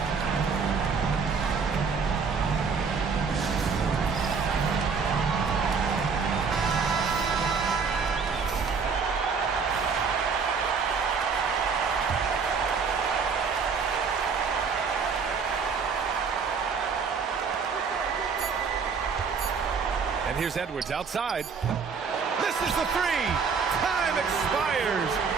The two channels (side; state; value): left; quieter; 5.5 dB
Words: And here's Edwards outside. Misses the 3. Time expires.